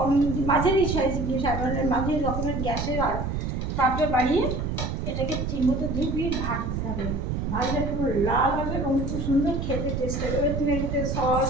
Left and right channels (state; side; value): noise; right; rumble, 2 dB below the sound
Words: মাঝারি সাইজ, মাঝারি রকমের গ্যাসের আর তাপটা বাড়িয়ে এটাকে ঠিকমতো দুই পিঠ ভাজতে হবে। ভাজলে পুরো লাল হবে এবং খুব সুন্দর খেতে টেস্ট হবে। এবার তুমি এটাতে